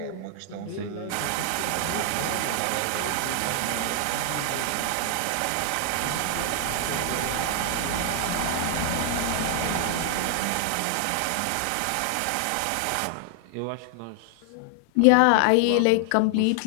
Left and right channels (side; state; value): both; different; correlation 0.00